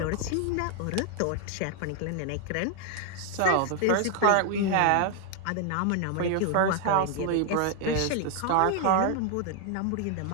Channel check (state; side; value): different; both; correlation 0.00